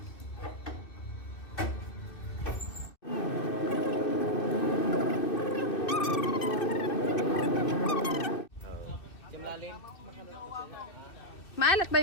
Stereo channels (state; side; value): late; right; 2.6 ms